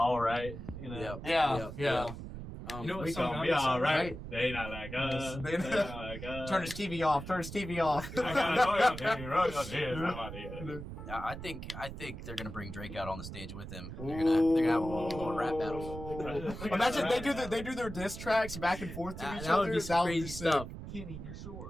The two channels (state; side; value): noise; right; rumble, 10 dB below the sound